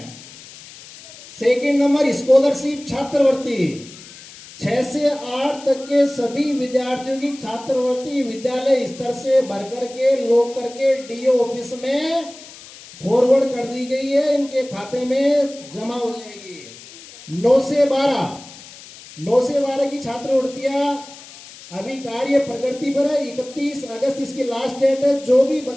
सेकेंड नंबर स्कॉलरशिप छात्रवृत्ति, 6 से 8 तक के सभी विद्यार्थियों की छात्रवृत्ति विद्यालय स्तर से भर करके लोग करके डीओ ऑफिस में फॉरवर्ड कर दी गई है, इनके खाते में जमा हो जाएगी। 9 से 12 की छात्रवृत्तियां अभी कार्य प्रगति पर है। 31 अगस्त इसकी लास्ट डेट है। जो भी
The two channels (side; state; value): left; noise; hiss, 18 dB below the sound